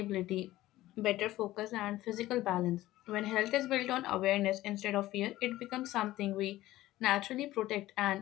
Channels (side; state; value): right; quieter; 16.0 dB